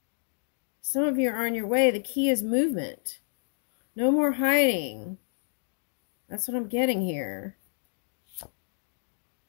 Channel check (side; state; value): right; silent; digital silence